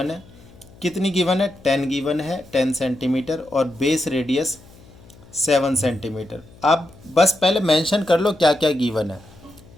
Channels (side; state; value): left; noise; hum, 24 dB below the sound